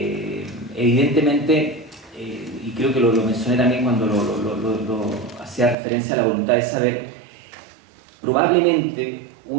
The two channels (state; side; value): drops out; left; at 5.8 s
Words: Evidentemente, y creo que lo mencioné también cuando lo hacía referencia a la voluntad de saber, probablemente